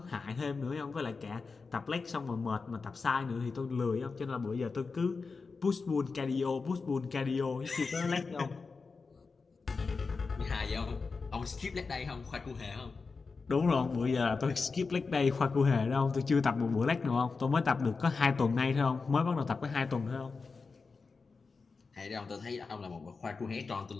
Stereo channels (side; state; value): right; quieter; 4.5 dB